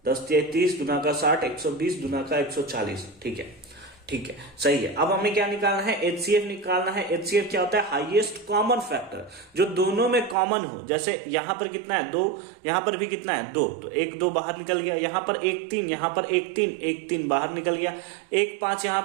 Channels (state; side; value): drops out; left; at 10.4 s